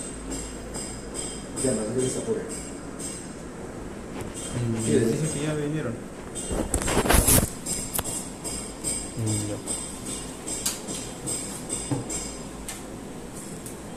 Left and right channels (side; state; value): both; identical; correlation 1.00